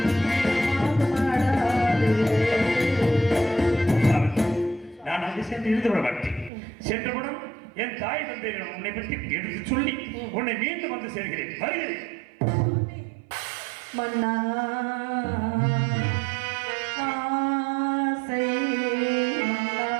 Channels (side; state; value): left; drops out; at 6.5 s